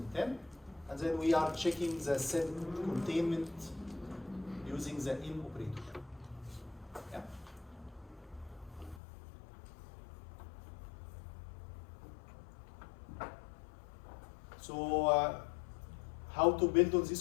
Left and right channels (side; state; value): right; drops out; at 9.0 s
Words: And then we are checking the set containment using the in operator. Yeah. So how to build on this